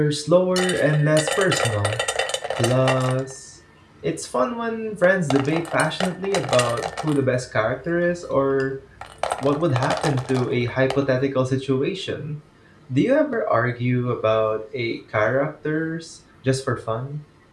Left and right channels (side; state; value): both; identical; correlation 1.00